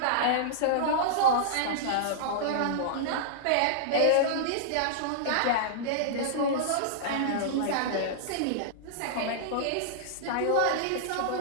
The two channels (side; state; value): both; different; correlation -0.02